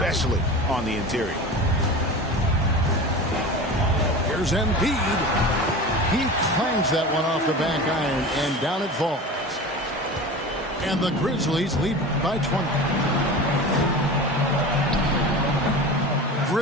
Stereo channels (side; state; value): both; normal; correlation 0.32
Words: on the interior. Here's Embiid. He clangs that one off the back iron, and down it falls. And the Grizzlies lead by 20.